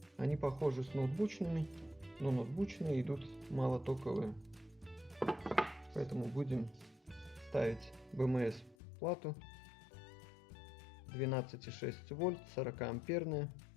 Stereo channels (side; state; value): right; drops out; at 8.8 s